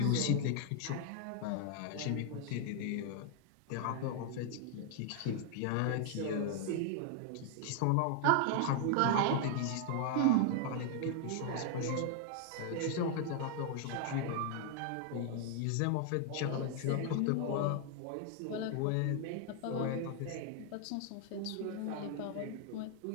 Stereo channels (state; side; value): different; both; correlation 0.00